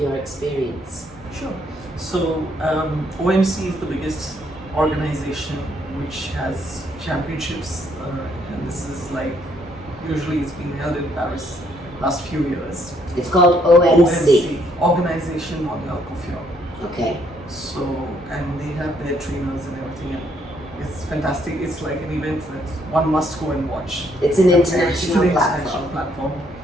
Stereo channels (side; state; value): both; normal; correlation 0.70